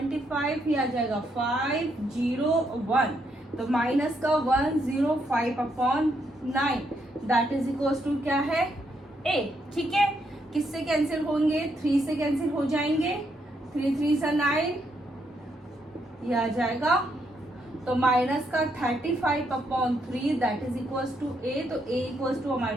ये आ जाएगा 501, तो माइनस का 105/9 दैट इज इक्वल टू क्या है a, ठीक है। किससे कैंसिल होंगे 3 से कैंसिल हो जाएंगे, 3 3 9, ये आ जाएगा, तो माइनस का 35/3 दैट इज इक्वल्स टू ए, तो ए इक्वल्स टू हमारे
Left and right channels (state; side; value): normal; both; correlation 0.77